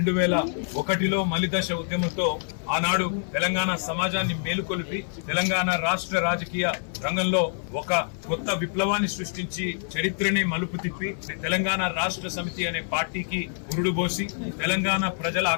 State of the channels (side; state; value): right; silent; 57 dB below the other